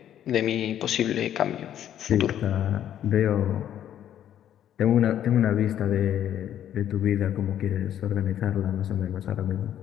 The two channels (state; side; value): quieter; right; 10.7 dB